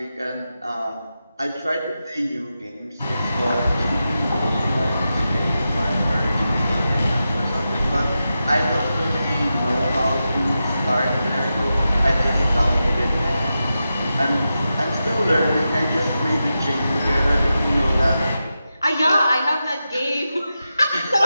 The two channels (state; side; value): inverted; both; correlation -0.90